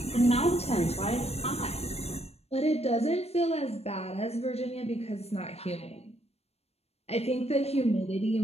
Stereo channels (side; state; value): right; late; 0.30 ms